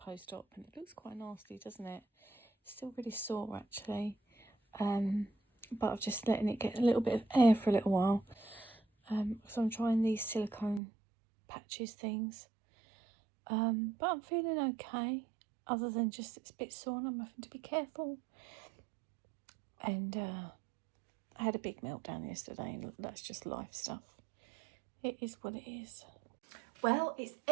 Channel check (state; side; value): drops out; left; at 10.8 s